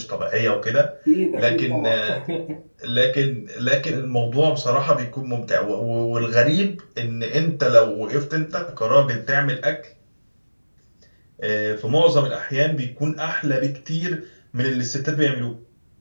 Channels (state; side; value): inverted; both; correlation -1.00